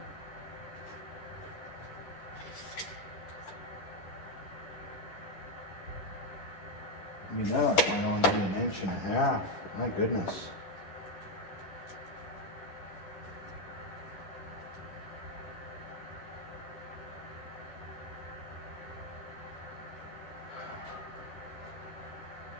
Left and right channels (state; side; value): late; right; 10 ms